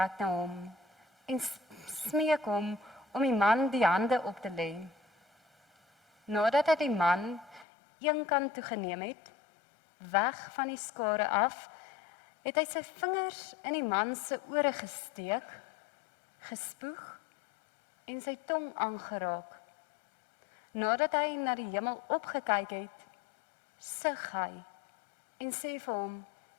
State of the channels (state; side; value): drops out; right; at 7.7 s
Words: na hom en smeek hom om die man die hande op te lê. Nadat hy die man een kant toe geneem het, weg van die skare af, het hy sy vingers in die man se ore gesteek, gespoeg en sy tong aangeraak. Nadat hy na die hemel opgekyk het, sug hy en sê vir hom,